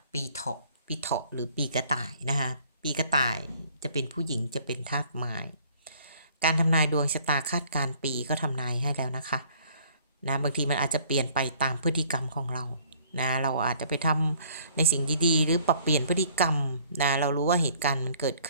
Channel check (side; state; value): both; inverted; correlation -0.58